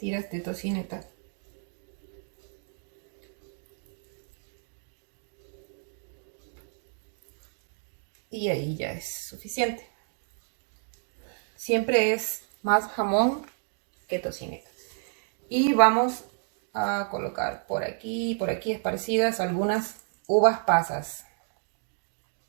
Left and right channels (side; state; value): left; silent; 58 dB below the other